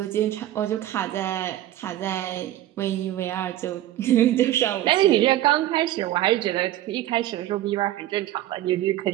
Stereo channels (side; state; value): left; quieter; 13.8 dB